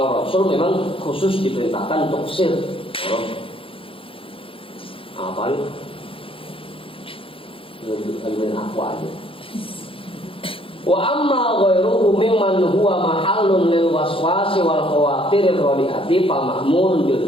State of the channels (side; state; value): right; late; 0.26 ms